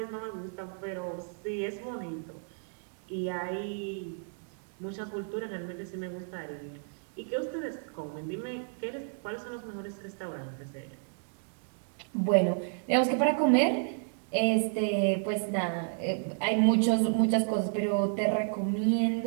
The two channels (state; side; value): silent; left; digital silence